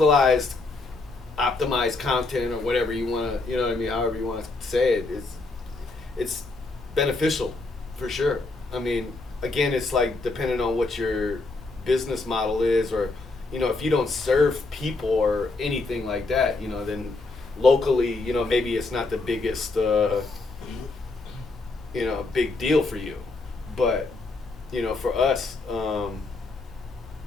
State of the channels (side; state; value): right; quieter; 3.5 dB